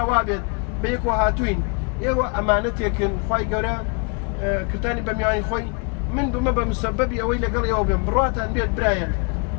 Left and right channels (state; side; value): quieter; right; 35.6 dB